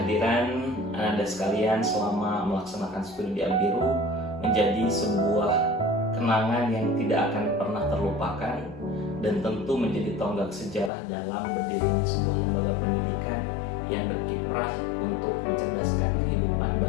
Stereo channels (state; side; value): drops out; right; at 10.9 s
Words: Anda sekalian selama melaksanakan studi di Albiru menjadi sebuah kenangan yang tidak akan pernah terlupakan dan tentu menjadi tonggak sejarah dalam berdirinya sebuah lembaga pendidikan yang berkiprah untuk mencerdaskan kehidupan